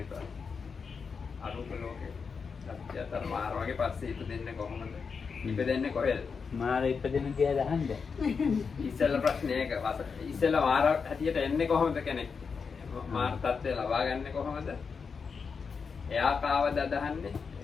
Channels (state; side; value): quieter; right; 5.5 dB